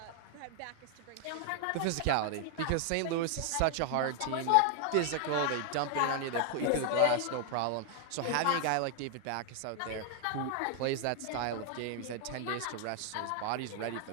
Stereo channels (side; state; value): both; different; correlation 0.00